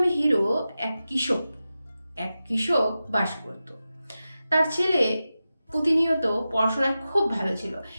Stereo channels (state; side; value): inverted; both; correlation -0.93